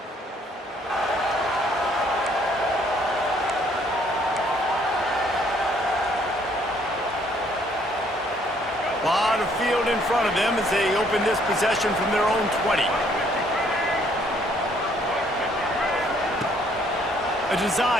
A lot of field in front of them as they open this possession from their own 20. A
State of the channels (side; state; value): both; normal; correlation 0.65